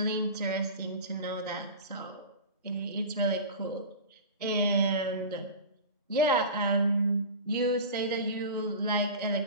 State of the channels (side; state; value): both; inverted; correlation -0.32